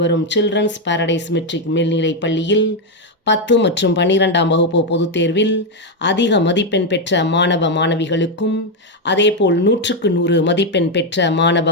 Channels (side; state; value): both; normal; correlation 0.04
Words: வரும் சில்ட்ரன்ஸ் பாரடைஸ் மெட்ரிக் மேல்நிலைப் பள்ளியில் 10 மற்றும் 12ஆம் வகுப்பு பொதுத் தேர்வில் அதிக மதிப்பெண் பெற்ற மாணவ மாணவிகளுக்கும், அதேபோல் 100க்கு 100 மதிப்பெண் பெற்ற